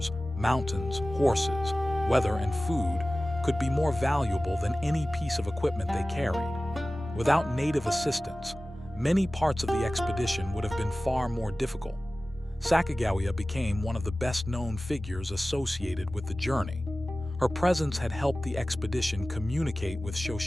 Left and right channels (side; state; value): both; normal; correlation 0.97